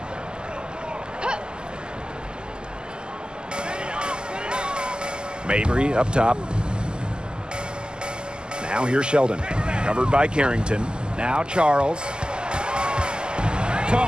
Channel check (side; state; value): left; late; 0.047 ms